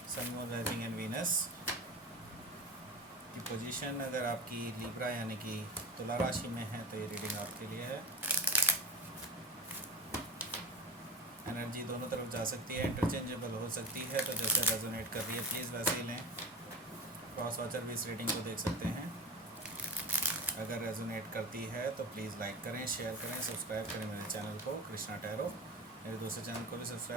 sun moon rising and Venus की पोजीशन। अगर आपकी लिब्रा यानी कि तुला राशि में है तो ये रीडिंग आपके लिए है। एनर्जी दोनों तरफ जा सकती है, इंटरचेंजेबल हो सकती है, तो जैसे रेजोनेट कर रही है प्लीज़ वैसे ही लें। क्रॉस वॉचर भी इस रीडिंग को देख सकते हैं। अगर रेजोनेट करती है तो प्लीज़ लाइक करें, शेयर करें, सब्सक्राइब करें मेरे चैनल को कृष्णा टैरो। मेरे दूसरे चैनल को भी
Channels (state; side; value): normal; both; correlation 0.29